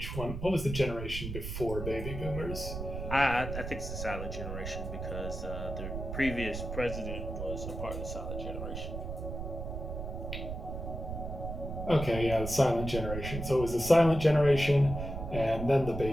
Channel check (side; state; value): right; noise; rumble, 6 dB below the sound